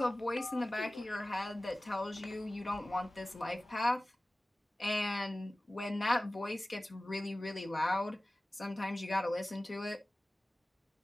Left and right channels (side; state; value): both; normal; correlation 0.97